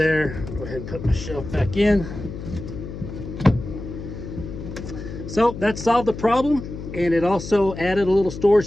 go ahead and put my shelf back in. So that solved the problem, and it also added a little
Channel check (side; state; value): left; noise; hum, 9 dB below the sound